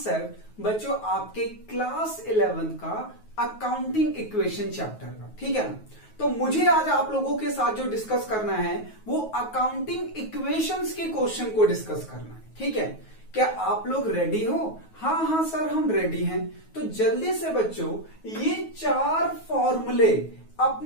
बच्चों आपके क्लास 11 का अकाउंटिंग इक्वेशन चैप्टर का, ठीक है ना। तो मुझे आज आप लोगों के साथ जो डिस्कस करना है वो अकाउंटिंग इक्वेशंस के क्वेश्चन को डिस्कस करना है, ठीक है। क्या आप लोग रेडी हो? हाँ सर हम रेडी हैं। तो जल्दी से बच्चों ये 4 फॉर्मूले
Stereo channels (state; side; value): late; right; 9.3 ms